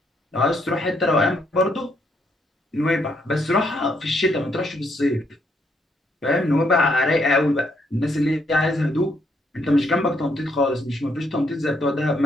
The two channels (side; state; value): both; normal; correlation 0.74